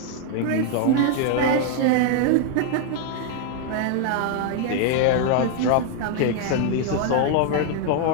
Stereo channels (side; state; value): both; different; correlation 0.00